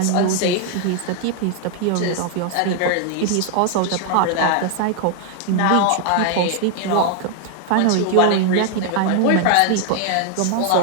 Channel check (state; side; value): different; both; correlation 0.00